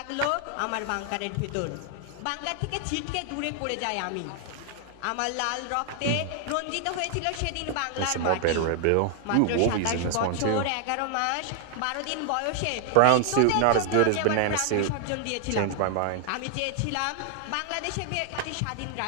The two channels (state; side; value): different; both; correlation 0.00